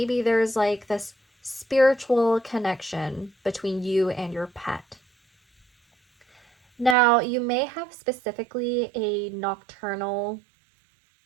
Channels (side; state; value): left; drops out; at 7.0 s